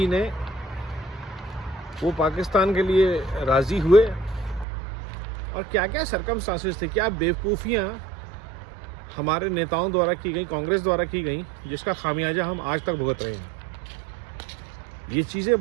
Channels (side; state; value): left; drops out; at 4.7 s